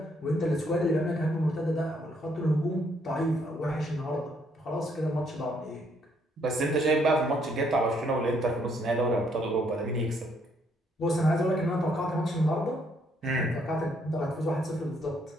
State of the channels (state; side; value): normal; both; correlation 0.70